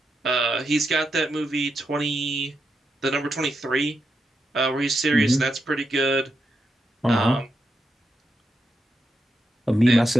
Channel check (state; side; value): normal; both; correlation 0.85